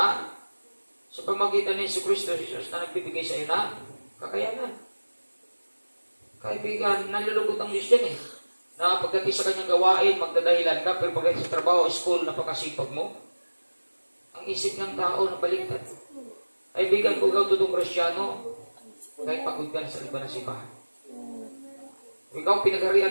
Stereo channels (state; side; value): inverted; both; correlation -1.00